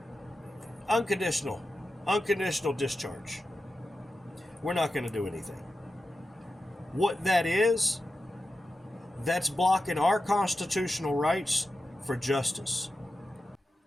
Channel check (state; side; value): normal; both; correlation 0.91